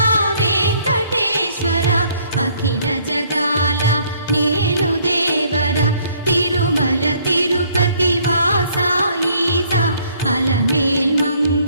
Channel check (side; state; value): both; inverted; correlation -0.63